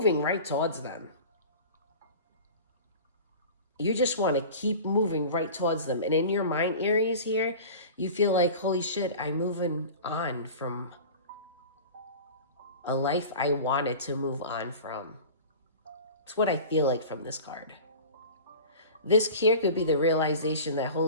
right towards them. You just want to keep moving right towards them. And in your mind, Aries, here, you feel like, holy shit, I'm moving on from a life I wanted to move on from. It's what I feel like from this card. This here could be the realization that,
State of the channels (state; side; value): inverted; both; correlation -0.37